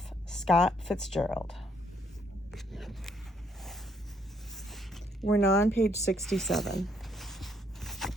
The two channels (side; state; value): both; normal; correlation 0.70